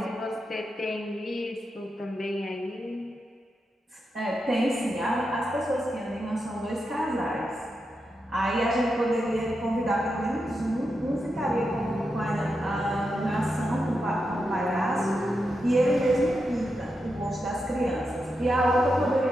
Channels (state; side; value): normal; both; correlation 0.87